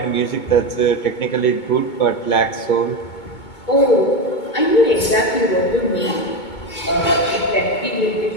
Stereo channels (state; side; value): late; right; 2.2 ms